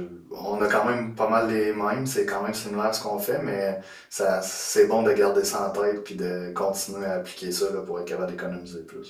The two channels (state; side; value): identical; both; correlation 1.00